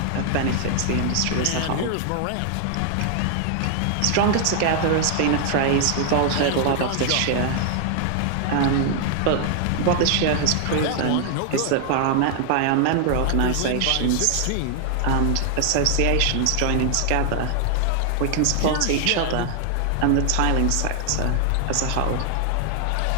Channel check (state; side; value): different; both; correlation 0.00